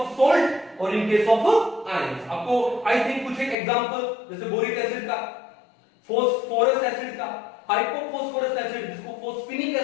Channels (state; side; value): drops out; right; at 3.6 s